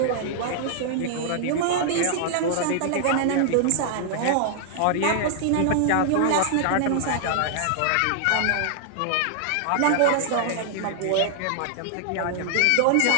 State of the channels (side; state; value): both; different; correlation -0.01